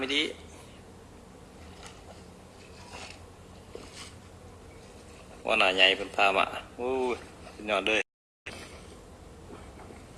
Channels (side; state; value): both; identical; correlation 1.00